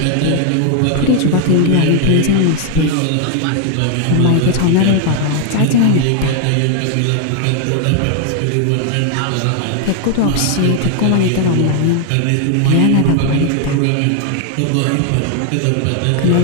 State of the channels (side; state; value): both; different; correlation 0.00